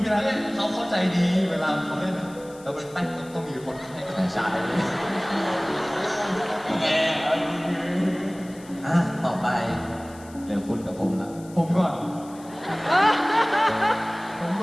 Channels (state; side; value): noise; left; hiss, 23 dB below the sound